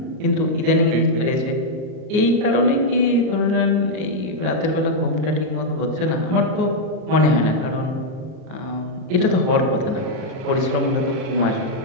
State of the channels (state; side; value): late; left; 38 ms